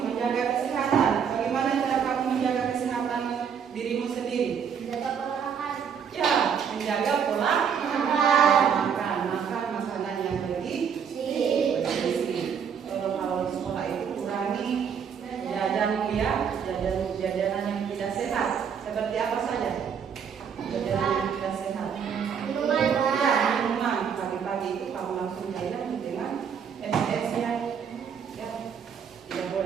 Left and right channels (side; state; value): left; quieter; 7.3 dB